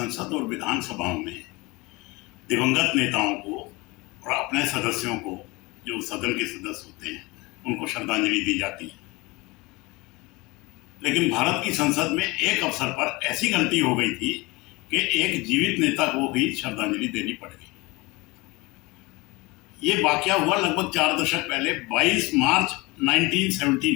और विधानसभाओं में दिवंगत नेताओं को और अपने सदस्यों को, जो सदन के सदस्य होते हैं, उनको श्रद्धांजलि दी जाती है। लेकिन भारत की संसद में एक अवसर पर ऐसी गलती हो गई थी कि एक जीवित नेता को भी श्रद्धांजलि देनी पड़ गई। ये वाकया हुआ लगभग 4 दशक पहले 22 मार्च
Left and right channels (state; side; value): quieter; right; 23.5 dB